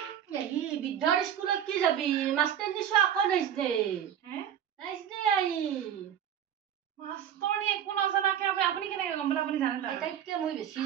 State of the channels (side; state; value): left; quieter; 9.6 dB